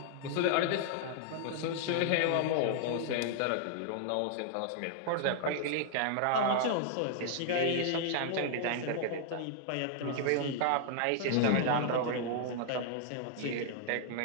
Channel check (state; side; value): different; both; correlation -0.01